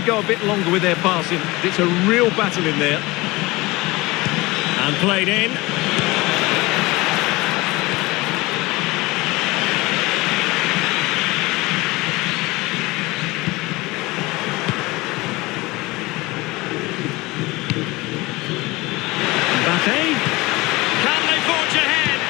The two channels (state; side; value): quieter; right; 21.8 dB